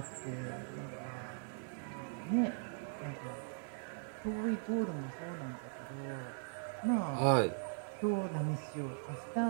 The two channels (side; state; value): left; silent; 51 dB below the other